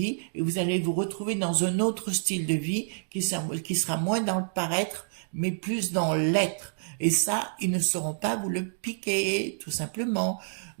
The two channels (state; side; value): silent; left; digital silence